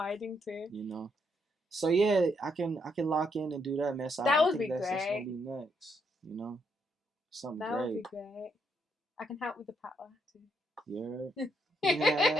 too. You know. So yeah, I can lock in and do that, man. So that would be great. That's gonna be next. You know, something that great. That would be great. I can help with the power too. Yeah.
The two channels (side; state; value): both; normal; correlation 0.76